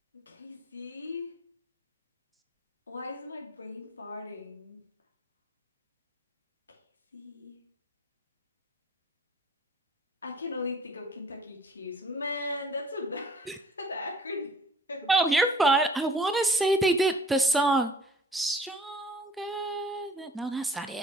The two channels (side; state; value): both; normal; correlation 0.52